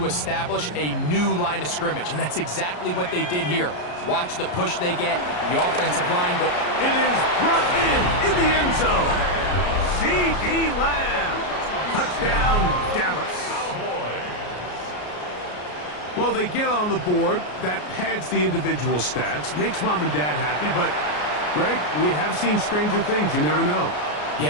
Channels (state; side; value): late; right; 33 ms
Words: establish a new line of scrimmage, and that's exactly what they did here. Watch the push they get, the offensive line go. It is brought in the end zone. C.D. Lamb. Touchdown, Dallas. Well, they get on the board. That pads the individual stats, makes mom and dad happy, but Greg, we have seen stranger things. You never know.